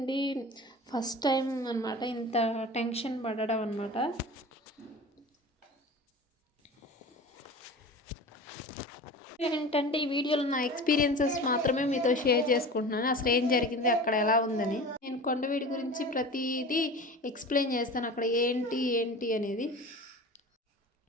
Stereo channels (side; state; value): both; normal; correlation 0.36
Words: ఫస్ట్ టైం అనమాట ఇంత టెన్షన్ పడడం అనమాట. ఏంటంటే ఈ వీడియోలో నా ఎక్స్పీరియన్సెస్ మాత్రమే మీతో షేర్ చేసుకుంటున్నాను. అసలు ఏం జరిగింది, అక్కడ ఎలా ఉందని. నేను కొండవీడి గురించి ప్రతిదీ ఎక్స్ప్లెయిన్ చేస్తాను. అక్కడ ఏంటి అనేది